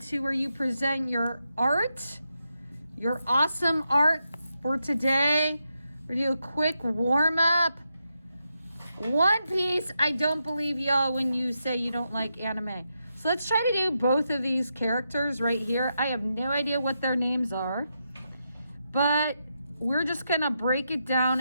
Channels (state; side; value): inverted; both; correlation -0.84